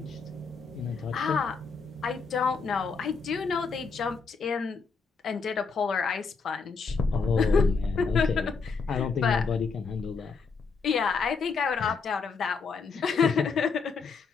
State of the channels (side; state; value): right; quieter; 5.0 dB